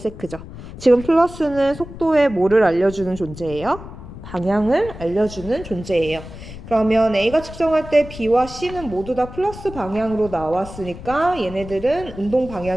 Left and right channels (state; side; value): noise; left; rumble, 14 dB below the sound